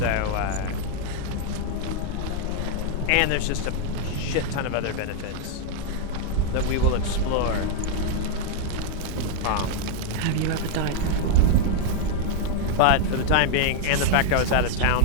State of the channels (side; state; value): both; different; correlation 0.00